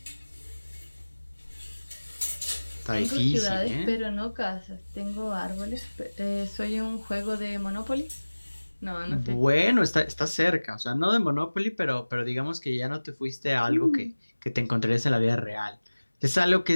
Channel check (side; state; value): both; inverted; correlation -1.00